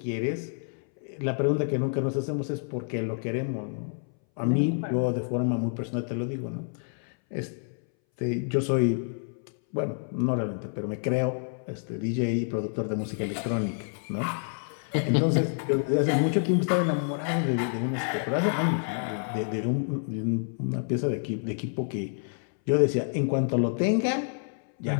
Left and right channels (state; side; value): silent; right; 59 dB below the other